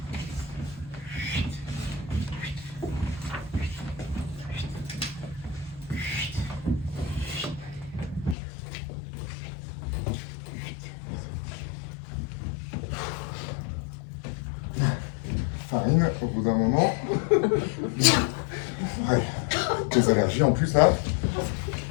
Farine, au bout d'un moment. Ouais. tes allergies en plus là.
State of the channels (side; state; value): right; drops out; at 8.3 s